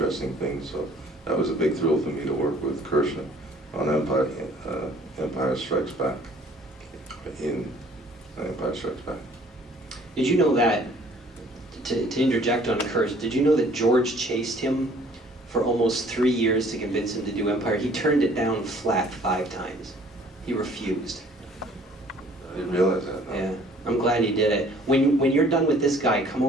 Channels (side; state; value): both; normal; correlation 0.55